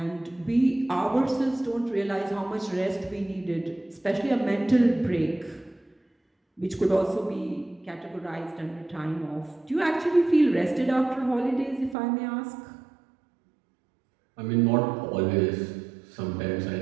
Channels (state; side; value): drops out; left; at 12.0 s